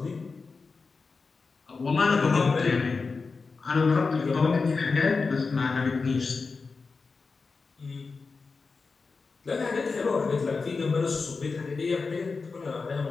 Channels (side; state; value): right; quieter; 4.4 dB